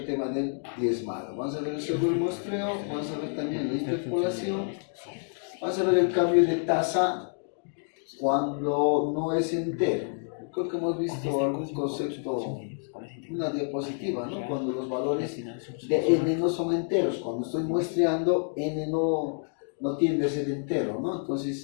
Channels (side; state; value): right; silent; 59 dB below the other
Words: tema del diezmado. Vamos a ver el sobremuestreo, vamos a ver también la interpolación, vamos a ver el cambio de tasa cuando no es entero. Creo que hemos visto algún concepto, una diapositiva, ¿no? Cuando los valores de n no son enteros, cuando estoy muestreando, n no tiende a ser entero, ¿no?